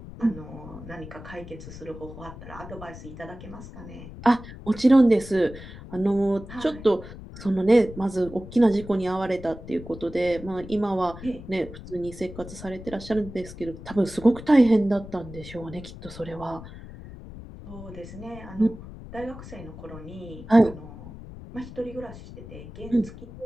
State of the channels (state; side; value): noise; left; rumble, 14 dB below the sound